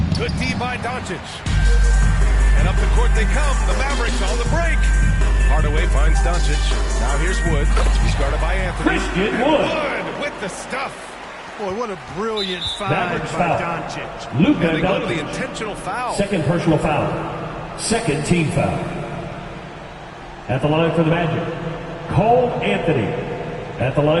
Good D by Doncic. And up the court they come. The Mavericks on the break. Hardaway finds Doncic. Now here's Wood. He's guarded by Anthony. Christian Wood with the stuff. Boy, what a brilliant find by Doncic. Luka And they go to the Doncic. intentional foul. Second personal foul. Second team foul. At the line for the Magic, Cole Anthony. At the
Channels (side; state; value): both; identical; correlation 1.00